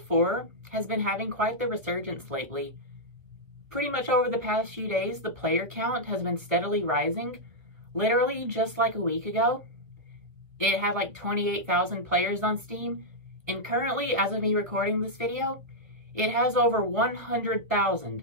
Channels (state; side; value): late; left; 1.3 ms